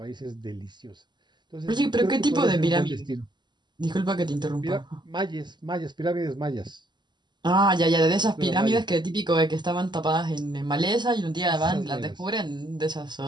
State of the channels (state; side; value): late; left; 0.21 ms